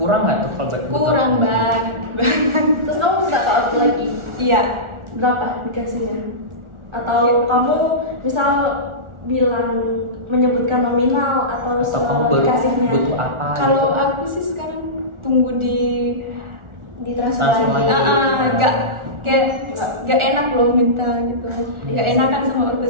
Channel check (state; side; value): late; left; 1.4 ms